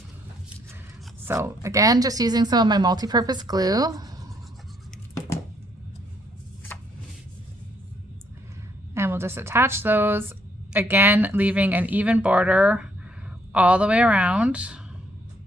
So again, just using some of my multi-purpose glue. And we'll just attach those, again, leaving an even border all the way around.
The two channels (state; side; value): normal; both; correlation 0.70